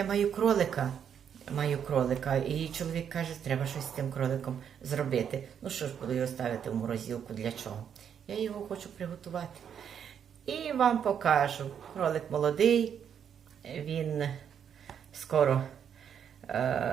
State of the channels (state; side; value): quieter; left; 8.2 dB